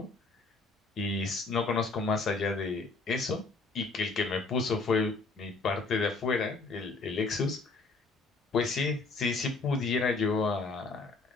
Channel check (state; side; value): quieter; right; 3.8 dB